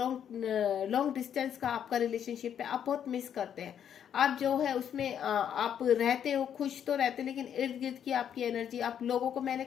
डिस्टेंस का आपका रिलेशनशिप है। आप बहुत मिस करते हैं। आप जो है उसमें आप रहते हो, खुश तो रहते, लेकिन इर्द गिर्द की आपकी एनर्जी, आप लोगों को, मैंने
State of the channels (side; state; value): right; quieter; 9.0 dB